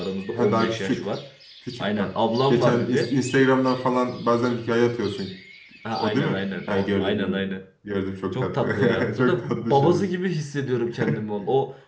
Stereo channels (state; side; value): identical; both; correlation 1.00